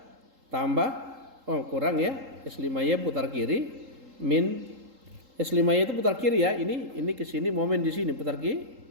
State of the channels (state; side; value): late; left; 3.8 ms